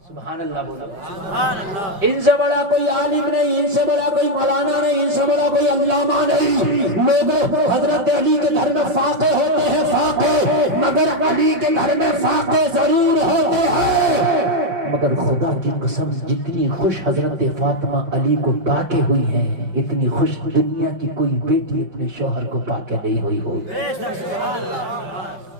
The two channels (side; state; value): left; late; 5.3 ms